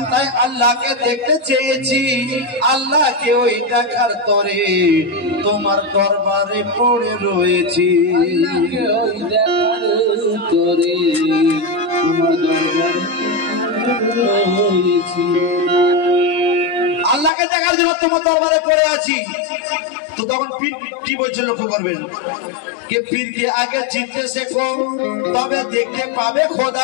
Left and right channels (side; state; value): right; drops out; at 17.3 s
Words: তাই আল্লাহকে দেখতে চেয়েছি আল্লাহকে ওই দেখার তরে তোমার দরবারে পড়ে রয়েছি ওই দেখার তরে তোমার দরবারে রয়েছি আল্লাহকে দেখার জন্য তোমার দরবারে পড়ে আছি তো তখন পীর কি বলছে লক্ষ্য করবেন কে পীরকে আগে চিনতে শেখো তবে দেখতে পাবে